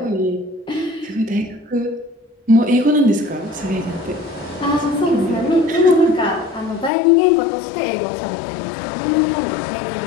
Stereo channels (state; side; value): drops out; right; at 6.9 s